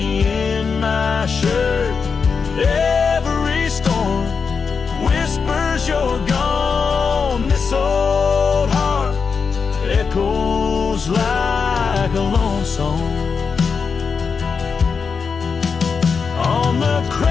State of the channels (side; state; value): right; quieter; 5.5 dB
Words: in my shirt. Every storm whispers you're gone. This old heart echoes like a lone song. On the